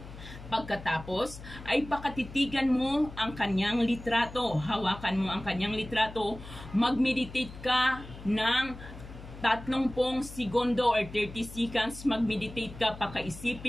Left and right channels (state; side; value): noise; left; hum, 14 dB below the sound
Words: Pagkatapos, ay pakatitigan mo ang kanyang litrato. Hawakan mo ang kanyang litrato. Mag-meditate ka ng 30 segundo or 30 seconds, mag-meditate ka,